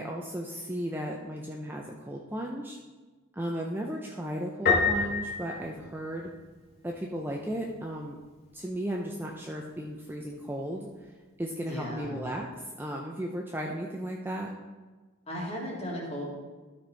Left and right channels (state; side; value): normal; both; correlation 0.46